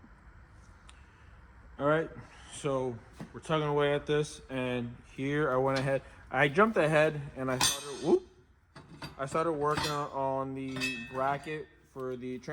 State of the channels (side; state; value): both; identical; correlation 1.00